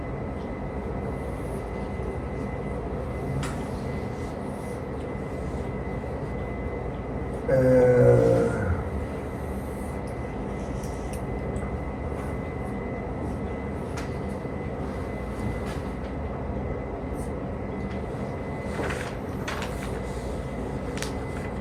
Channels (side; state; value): both; identical; correlation 1.00